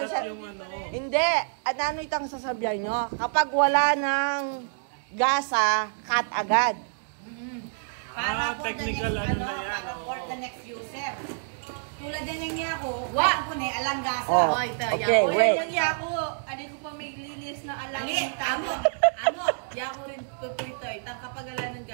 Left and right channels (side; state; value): left; silent; digital silence